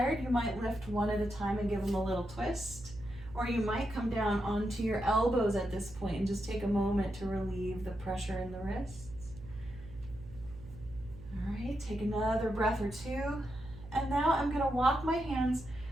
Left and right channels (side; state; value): right; noise; hum, 16 dB below the sound